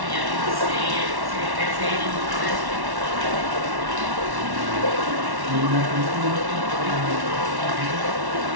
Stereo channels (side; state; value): left; late; 1.1 ms